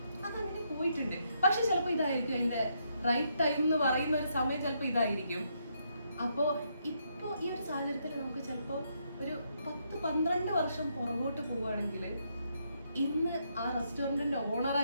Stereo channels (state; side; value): inverted; both; correlation -0.77